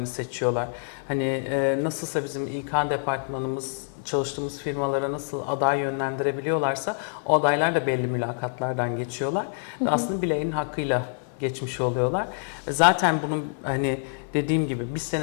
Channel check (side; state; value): right; silent; 61 dB below the other